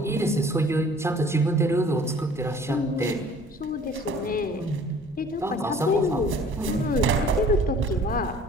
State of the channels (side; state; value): both; normal; correlation 0.51